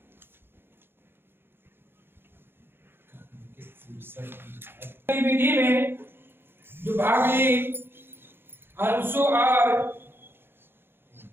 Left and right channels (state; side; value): late; left; 0.11 ms